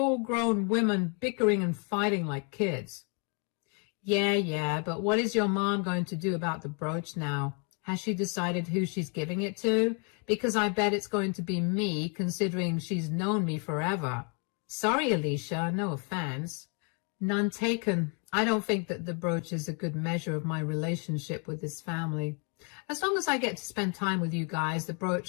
women bickering and fighting like kids. Yeah, but what is your mom going to do about the brooch now? Has she decided who she's giving it to? Because I bet it's going to be me, considering she's known me forever. Sorry, Alicia, no offense. None taken. I don't think that the brooch is a good measure of my relationship with this family. As long as I get to spend time with you guys, the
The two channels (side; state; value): right; quieter; 37.7 dB